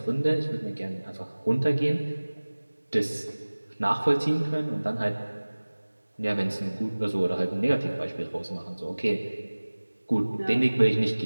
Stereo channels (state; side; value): inverted; both; correlation -1.00